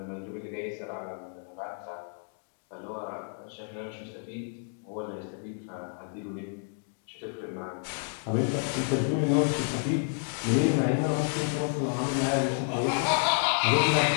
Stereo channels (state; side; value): silent; right; 55 dB below the other